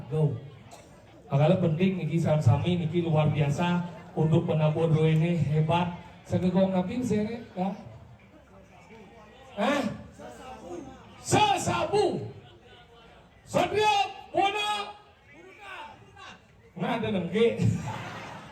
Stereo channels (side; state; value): both; identical; correlation 1.00